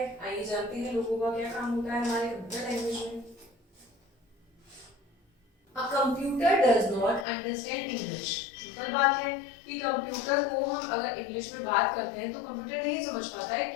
आइए जानते हैं लोगो का क्या काम होता है हमारे कंप्यूटर लैंग्वेज में। A computer does not understand English। Simple बात है कि कंप्यूटर को हम अगर इंग्लिश में बात करते हैं तो कंप्यूटर नहीं समझ पाता है,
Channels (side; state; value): right; drops out; at 7.2 s